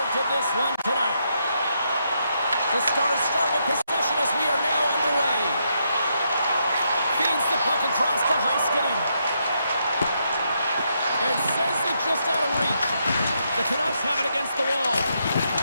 to this one tonight. The Stars start with possession as we are now underway. Feeds the puck across to Heiskanen. And sends it just out of reach. The Canucks have it against the wall.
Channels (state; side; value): inverted; both; correlation -0.79